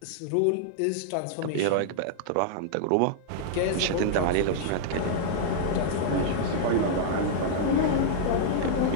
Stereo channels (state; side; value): different; both; correlation -0.01